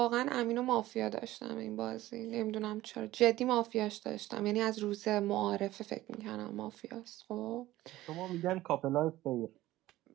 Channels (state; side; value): quieter; left; 16.1 dB